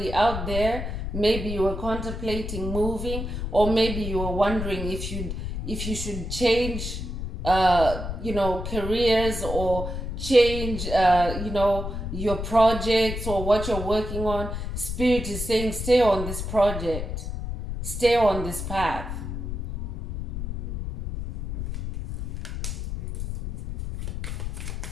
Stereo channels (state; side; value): noise; left; rumble, 5 dB below the sound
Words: out there, maybe you were contemplating moving, or maybe you were wondering if you should change, careers, or change, your projects or what you're working on. Spirit is saying, stay on this project, stay on this path.